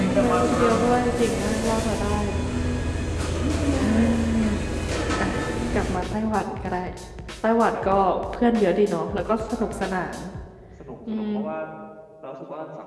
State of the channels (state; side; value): identical; both; correlation 1.00